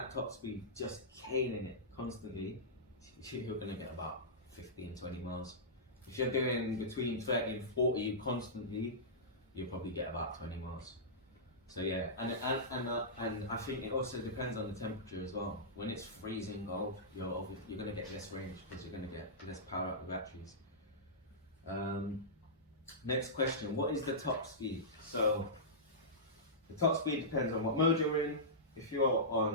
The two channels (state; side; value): normal; both; correlation -0.16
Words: top speed, just caning it constantly, you're going to get about 15, 20 miles. If you're doing between 30 and 40 constantly, you'll probably get about 20 miles. So yeah, and I think it also depends on the temperature as well. When it's freezing cold, you're going to get less range because you're going to get less power out of the batteries. Next question, what is the top speed? So the top speed depends on what mode you're in. If you're